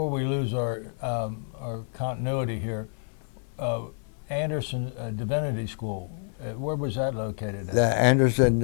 we lose our continuity here, Anderson Divinity School, where was that located at? Anderson,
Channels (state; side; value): silent; right; 59 dB below the other